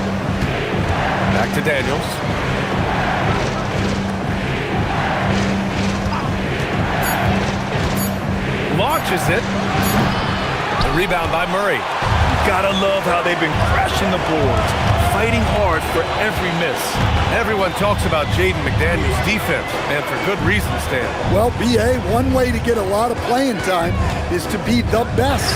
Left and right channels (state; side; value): identical; both; correlation 1.00